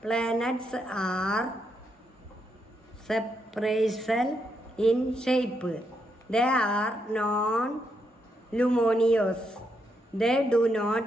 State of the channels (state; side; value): normal; both; correlation 0.79